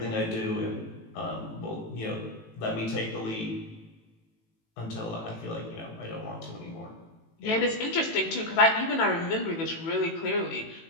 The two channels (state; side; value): late; right; 18 ms